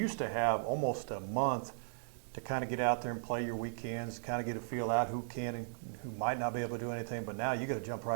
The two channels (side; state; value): left; silent; 53 dB below the other